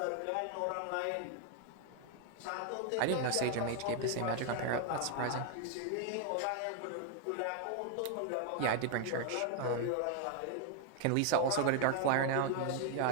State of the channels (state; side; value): different; both; correlation 0.00